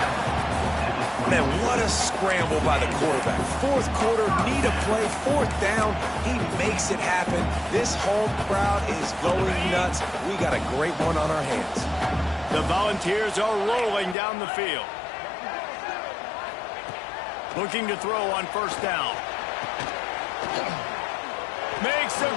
Man, what a scramble by the quarterback. Fourth quarter, need a play, fourth down. He makes it happen. This home crowd is going nuts. We got a great one on our hands. The Volunteers are rolling down the field. Looking to throw on first down. Makes the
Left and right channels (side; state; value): right; drops out; at 14.2 s